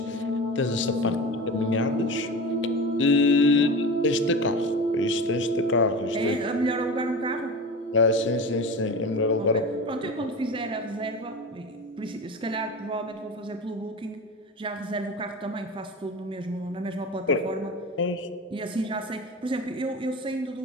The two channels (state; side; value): normal; both; correlation 0.30